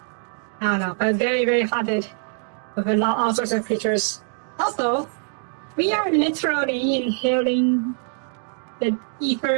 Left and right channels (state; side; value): silent; left; 57 dB below the other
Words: I don't know, but very, very haunted with all sorts of creatures. Also, we are literally inhaling the ether